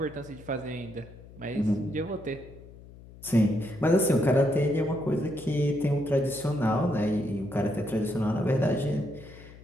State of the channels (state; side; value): noise; left; hum, 19 dB below the sound